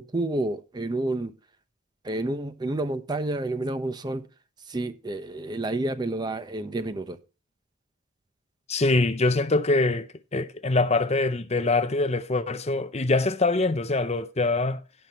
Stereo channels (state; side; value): normal; both; correlation 0.45